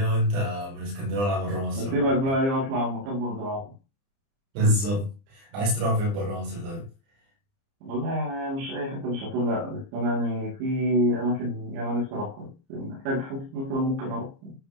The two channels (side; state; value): left; late; 30 ms